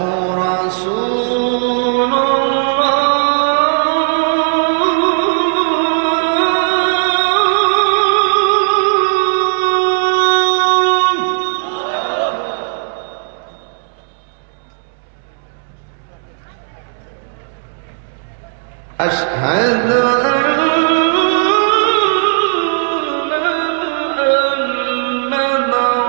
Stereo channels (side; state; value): left; silent; 69 dB below the other